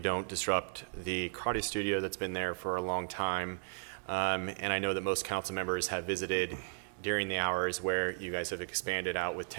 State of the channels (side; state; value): left; silent; digital silence